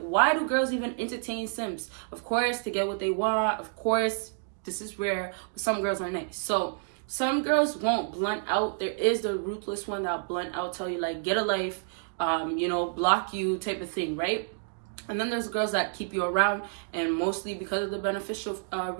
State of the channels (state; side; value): silent; left; digital silence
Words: do girls even entertain simps? Of course, to get what they want. Of course, this is rare, but some girls are nice. So some girls won't blunt out. There is the ruthless one that'll blunt out, tell you like, get a life, you know, block you type of thing, right? And then there's girls that keep you around, and mostly because of the beneficial